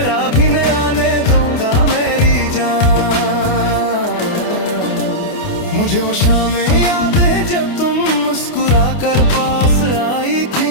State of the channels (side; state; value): right; late; 28 ms